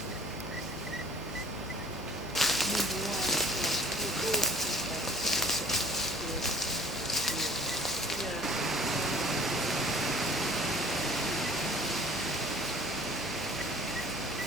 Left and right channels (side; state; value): both; normal; correlation 0.49